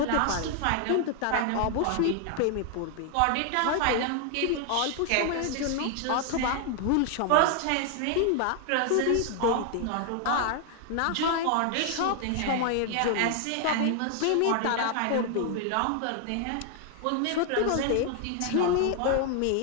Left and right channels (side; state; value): both; different; correlation 0.00